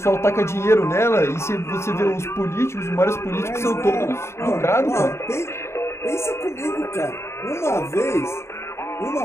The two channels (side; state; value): right; late; 0.13 ms